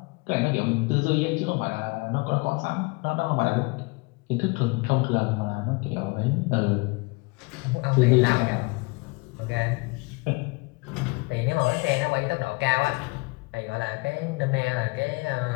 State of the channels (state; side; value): quieter; right; 27.2 dB